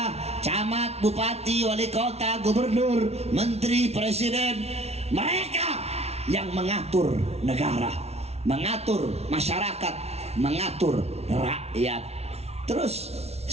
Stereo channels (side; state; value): left; late; 0.31 ms